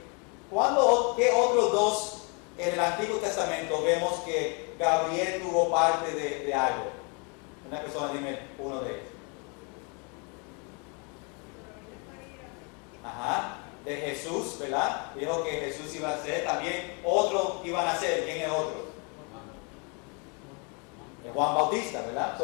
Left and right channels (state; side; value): quieter; right; 34.0 dB